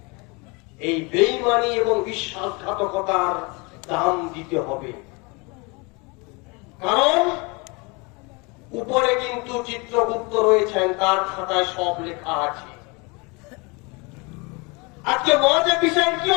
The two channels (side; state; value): right; quieter; 28.6 dB